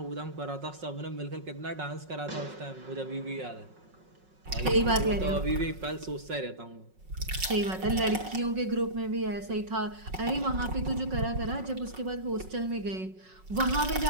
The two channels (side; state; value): left; late; 5.4 ms